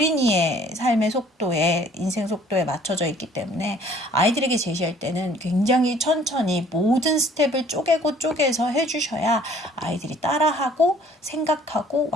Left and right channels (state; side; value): normal; both; correlation 0.56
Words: 삶의 속도에 인생 속도에 맞춰져 있기 때문에 아이들에게 제시할 때는 굉장히 천천히 모든 스텝을 쪼개서 해주셔야 아이들이 따라하고 생각하고